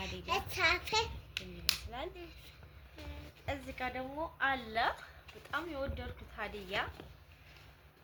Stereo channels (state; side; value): identical; both; correlation 1.00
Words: ይመስላል እዚህ ጋር ደግሞ አለ በጣም የወደድኩት ሀዲያ